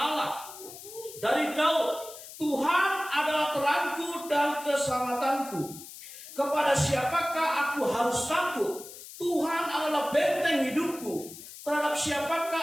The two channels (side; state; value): left; noise; hiss, 15 dB below the sound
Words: Dari Daud, Tuhan adalah terangku dan keselamatanku. Kepada siapakah aku harus takut? Tuhan adalah benteng hidupku. Terhadap